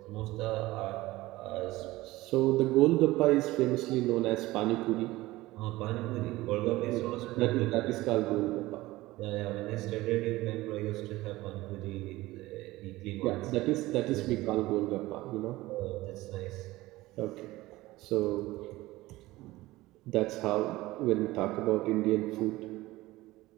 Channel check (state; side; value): quieter; left; 18.5 dB